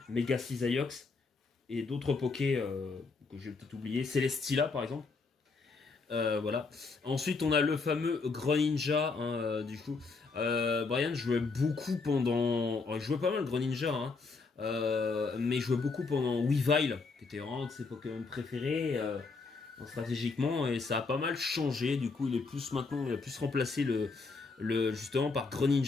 Mega Cisaiox et d'autres Poké que j'ai peut-être oublié, Celesteela par exemple. Ensuite on a le fameux Greninja du coup. Brian jouait beaucoup pendant... il jouait pas mal Greninja mais il jouait beaucoup pendant Weavile qui était vraiment un de ses Pokémon préférés stratégiquement, et ça a pas mal changé. Du coup il est plus maintenant, il a plus remplacé justement par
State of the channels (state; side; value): quieter; right; 4.3 dB